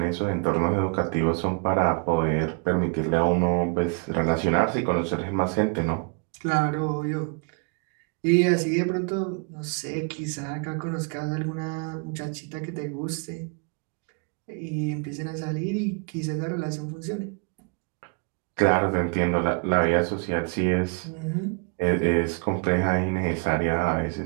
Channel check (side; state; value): left; quieter; 35.1 dB